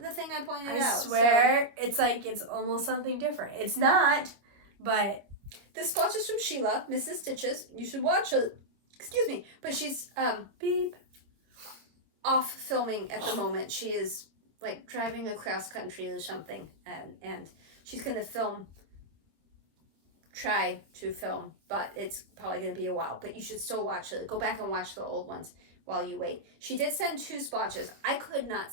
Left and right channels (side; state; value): left; late; 26 ms